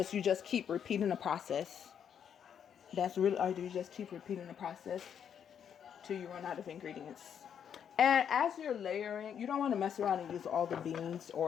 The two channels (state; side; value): quieter; right; 8.3 dB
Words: just keep repeating the process. That's really all you do. You just keep repeating the process till you run out of ingredients. And as you're layering, you don't want to mess around and use all the beans